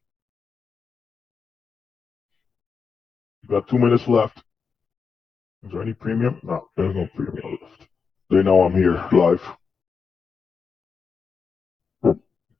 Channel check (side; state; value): right; quieter; 5.5 dB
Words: You got 2 minutes left. Is there any premium? No, there's no premium left. They know I'm here live.